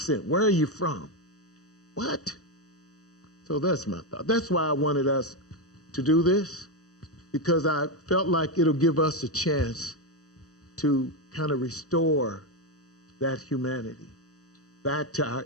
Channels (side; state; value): right; late; 0.66 ms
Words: where are you from? What? So that's my thought. That's why I wanted us to do this, because I felt like it'll give us a chance to kind of restore that humanity back to our